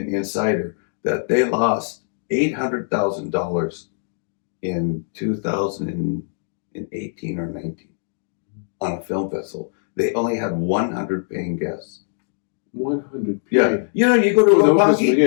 insider, that they lost $800,000 in 2018 or 19 on a film festival. They only had 100 paying guests. 100. Yeah. You go to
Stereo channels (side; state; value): right; silent; digital silence